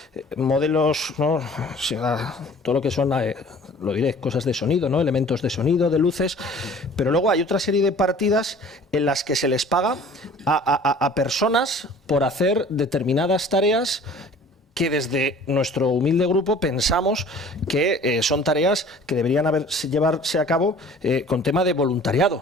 modelos, ¿no? Todo lo que son, lo diré, cosas de sonido, ¿no? Elementos de sonido, de luces, pero luego hay otra serie de partidas en las que se les paga a personas por hacer determinadas tareas que desde nuestro humilde grupo pensamos que son tareas que deberían llevarse a cabo con tema de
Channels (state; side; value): normal; both; correlation 0.48